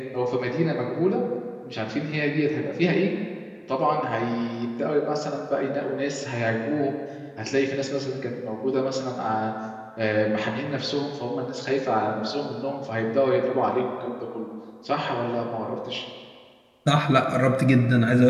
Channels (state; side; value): identical; both; correlation 1.00